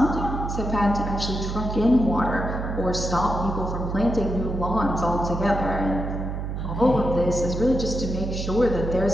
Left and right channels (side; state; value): right; noise; hum, 4 dB below the sound